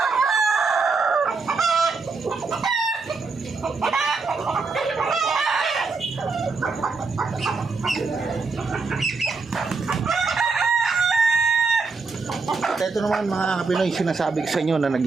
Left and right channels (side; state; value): left; quieter; 4.3 dB